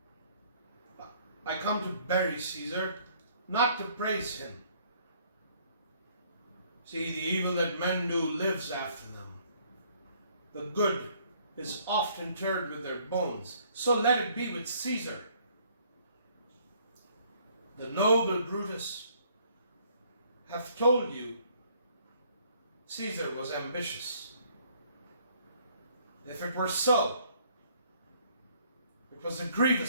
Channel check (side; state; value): both; inverted; correlation -0.62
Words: I come to bury Caesar, not to praise him. See, the evil that men do lives after them. The good is oft interred with their bones, so let it be with Caesar. The noble Brutus hath told you Caesar was ambitious. If it were so, it was a